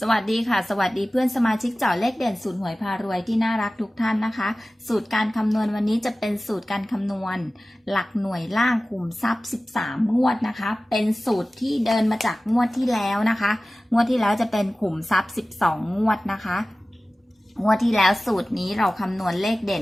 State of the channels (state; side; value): normal; both; correlation 0.97